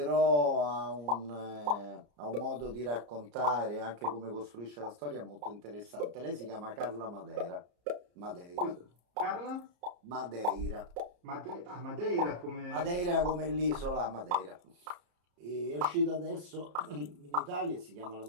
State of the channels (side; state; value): left; late; 34 ms